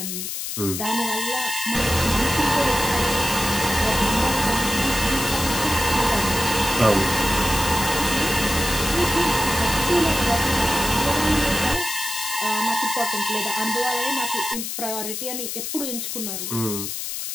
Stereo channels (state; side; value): noise; left; hiss, 5 dB below the sound